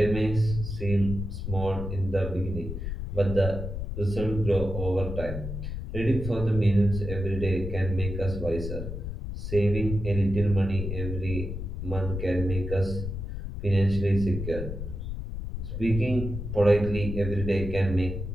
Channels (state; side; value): noise; left; rumble, 6 dB below the sound